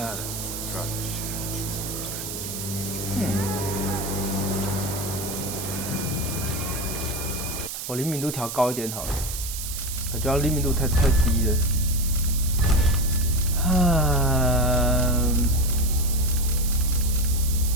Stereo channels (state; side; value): noise; right; hiss, 6 dB below the sound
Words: 我灵敏度调高一点好了，感觉灵敏度太低了。